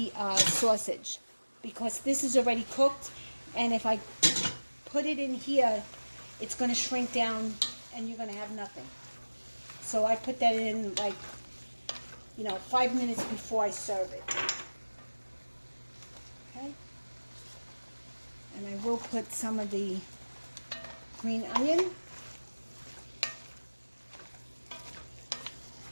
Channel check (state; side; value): inverted; both; correlation -1.00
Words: sausage, because this is already cooked, and if I put it in here, it's going to shrink down and you're going to have nothing. So I put that in, like, 5 minutes before I serve it. Okay? And I will put some of the green onion.